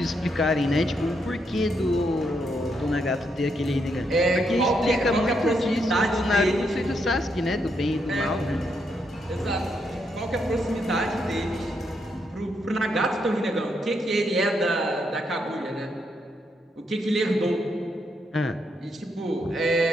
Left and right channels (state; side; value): normal; both; correlation 0.78